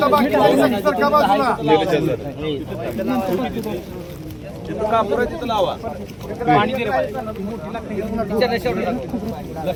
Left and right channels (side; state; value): both; identical; correlation 1.00